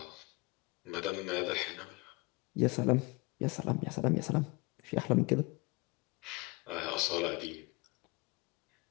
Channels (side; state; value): right; quieter; 26.1 dB